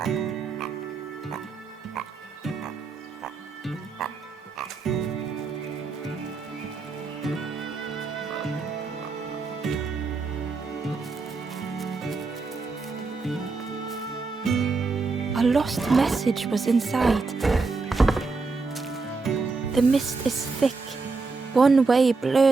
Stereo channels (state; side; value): quieter; left; 4.1 dB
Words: A lost message was inside. The mist is thick. One way